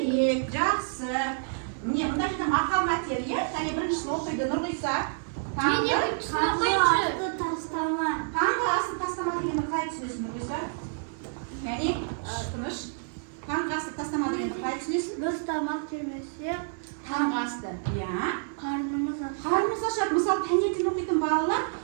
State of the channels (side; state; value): left; silent; 59 dB below the other